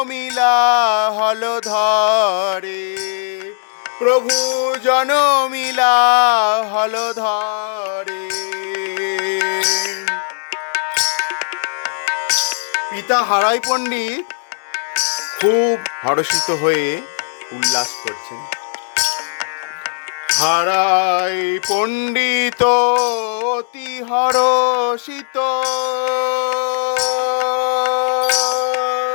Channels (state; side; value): silent; right; digital silence